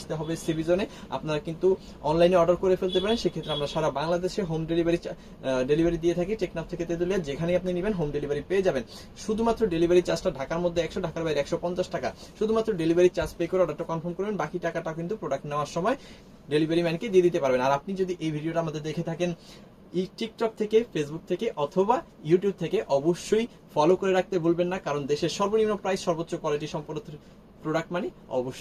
হবে সিবিজনে। আপনারা কিন্তু অনলাইনে অর্ডার করে ফেলতে পারেন, সেক্ষেত্রে আমরা সারা বাংলাদেশে হোম ডেলিভারি দিয়ে থাকি। টেকনাফ থেকে তেতুলিয়া, যেখানেই আপনি নেবেন হোম ডেলিভারি পেয়ে যাবেন। শুধুমাত্র ডেলিভারি চার্জটা ঢাকার মধ্যে 100, ঢাকার বাইরে 150 টাকা। শুধুমাত্র ডেলিভারি চার্জ পে করে অর্ডারটা কনফার্ম করবেন, বাকি টাকাটা কিন্তু প্রোডাক্ট নেওয়ার সময় ডেলিভারি ম্যানকে দিয়ে দিতে পারবেন। আর আপনি যদি এই ভিডিওটা আমাদের দেখে থাকেন টিকটক থেকে, ফেসবুক থেকে অথবা ইউটিউব থেকে, অবশ্যই ফলো করে রাখতে ভুলবেন না, কারণ দেশের সর্বনিম্ন প্রাইস, সর্বোচ্চ কোয়ালিটি সম্পন্ন প্রোডাক্ট মানে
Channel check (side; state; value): both; identical; correlation 1.00